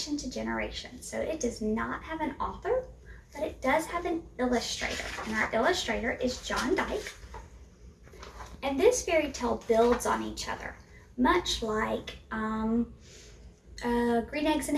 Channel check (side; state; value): both; identical; correlation 1.00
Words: to generation. So it does not have an author, but it does have an illustrator. And our illustrator is John Dyke. And this fairy tale builds on each other, much like Green Eggs and